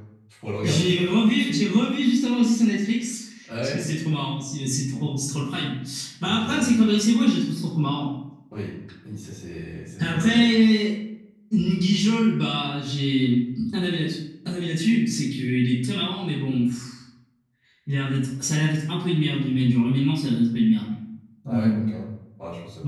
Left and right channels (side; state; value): both; identical; correlation 1.00